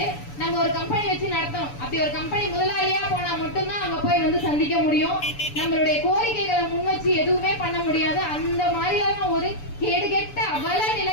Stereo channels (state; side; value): late; right; 6.9 ms